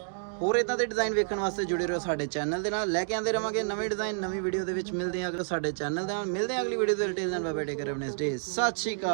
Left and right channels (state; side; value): silent; left; digital silence